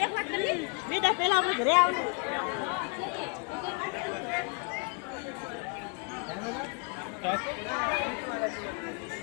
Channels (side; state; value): right; quieter; 35.4 dB